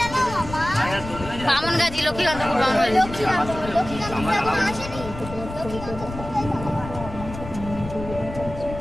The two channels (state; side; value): noise; left; rumble, 11 dB below the sound